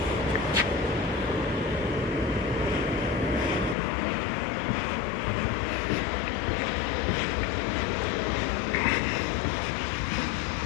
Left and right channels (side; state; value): right; drops out; at 3.8 s